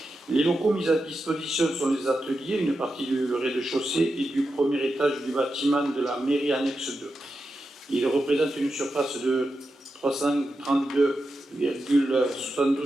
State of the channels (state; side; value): normal; both; correlation 0.89